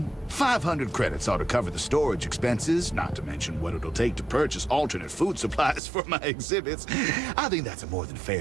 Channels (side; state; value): left; drops out; at 5.8 s